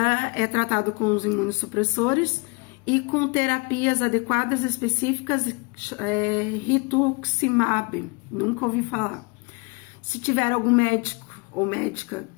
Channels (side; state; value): right; quieter; 31.2 dB